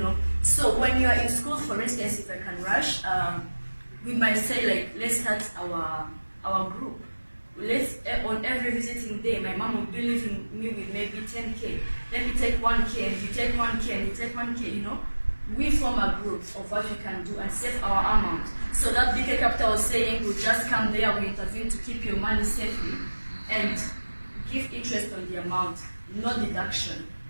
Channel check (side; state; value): both; inverted; correlation -1.00